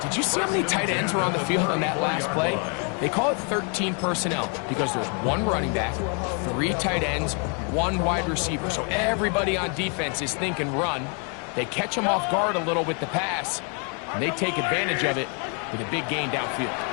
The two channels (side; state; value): right; quieter; 38.1 dB